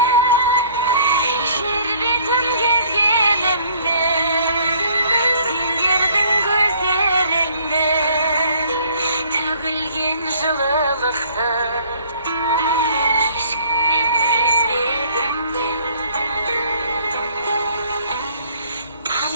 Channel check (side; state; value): both; inverted; correlation -0.57